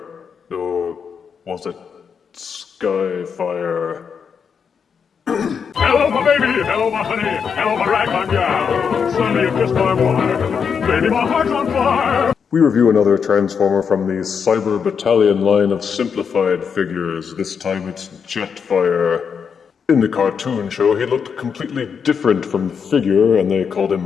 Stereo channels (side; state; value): right; quieter; 6.5 dB